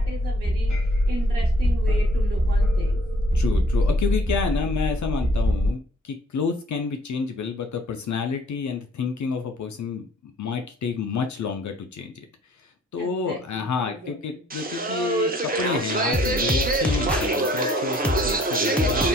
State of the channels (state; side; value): normal; both; correlation 0.59